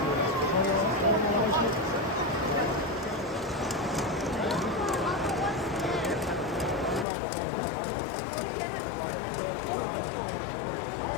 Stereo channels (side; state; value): right; drops out; at 7.1 s